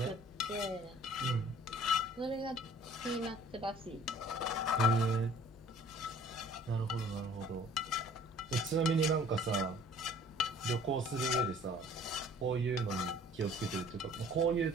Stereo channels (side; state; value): both; normal; correlation 0.52